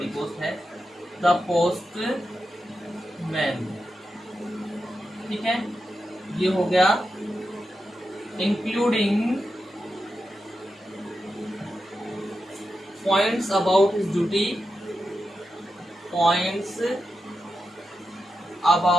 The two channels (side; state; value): both; normal; correlation 0.89